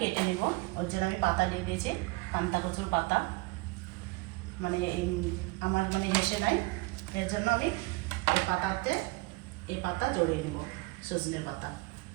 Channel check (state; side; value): quieter; left; 24.2 dB